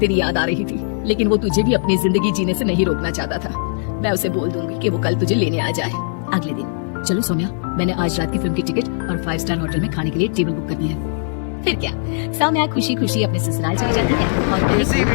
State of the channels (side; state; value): right; silent; digital silence